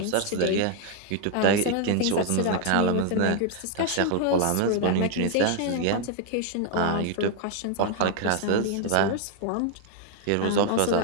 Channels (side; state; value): both; different; correlation 0.00